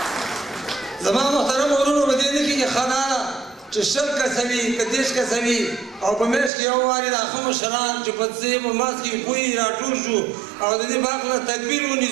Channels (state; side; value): drops out; left; at 6.5 s